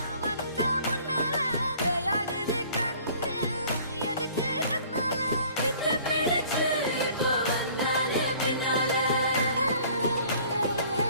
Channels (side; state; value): both; inverted; correlation -0.52